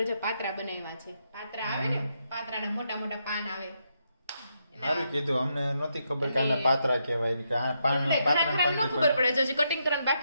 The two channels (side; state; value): both; inverted; correlation -0.80